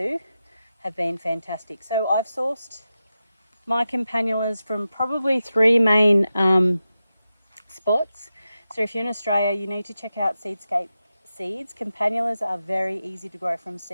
have been fantastic. So I've sourced my campanulas from probably three main spots. So if you're in Australia, you need to check out Seedscape seeds. Campanulas are very easy to grow from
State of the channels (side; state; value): both; inverted; correlation -0.91